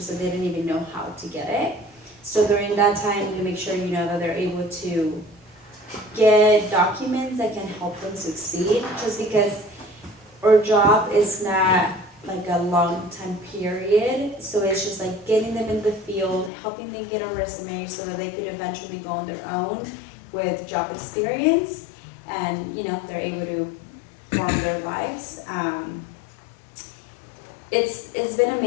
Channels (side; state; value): right; drops out; at 16.5 s